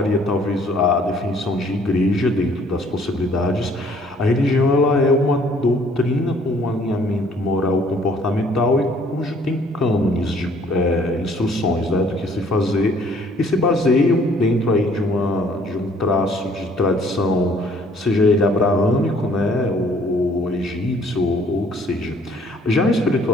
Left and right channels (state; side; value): normal; both; correlation 0.60